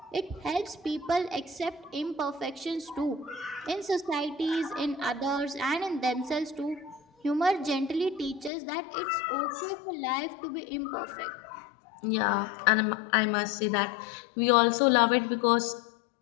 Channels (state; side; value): drops out; right; at 8.5 s